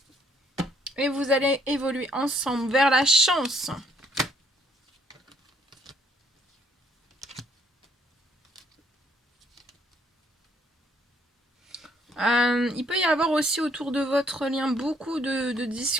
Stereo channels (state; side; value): normal; both; correlation 0.67